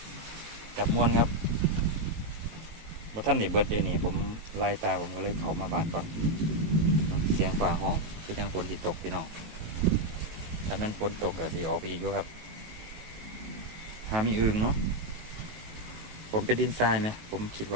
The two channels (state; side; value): late; left; 18 ms